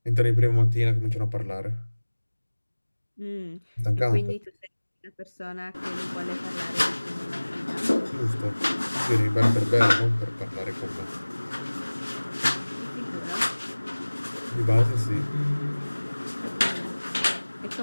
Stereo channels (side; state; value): both; inverted; correlation -1.00